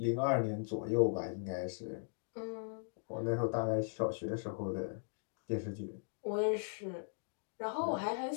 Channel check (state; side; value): silent; right; digital silence